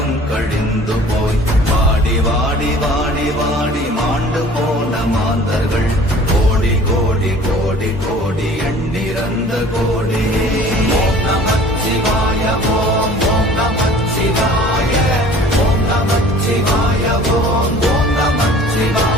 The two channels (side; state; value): both; normal; correlation 0.48